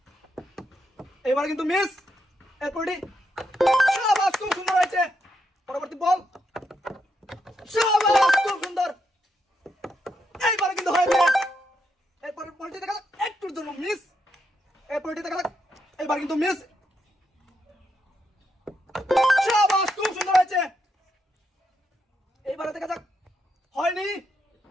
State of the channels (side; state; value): both; normal; correlation 0.81